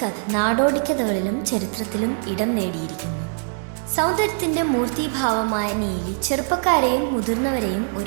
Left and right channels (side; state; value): left; silent; digital silence